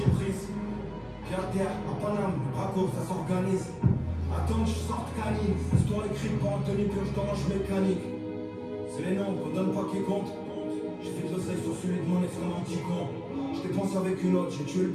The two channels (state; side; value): identical; both; correlation 1.00